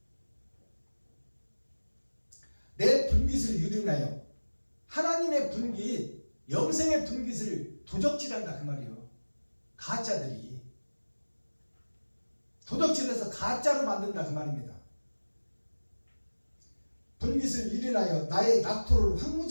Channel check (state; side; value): inverted; both; correlation -1.00